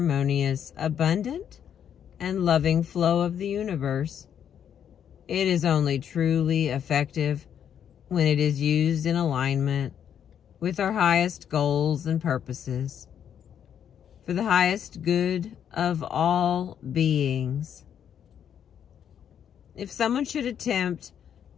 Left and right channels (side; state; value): right; quieter; 8.9 dB